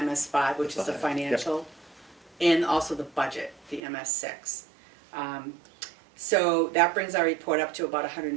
which is the 5, yep. financial, and also the budget, the MS6. So that brings our report up to about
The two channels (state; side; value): drops out; left; at 3.8 s